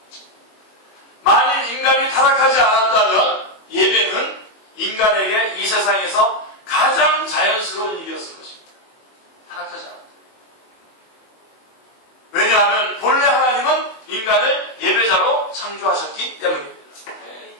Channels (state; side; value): late; right; 21 ms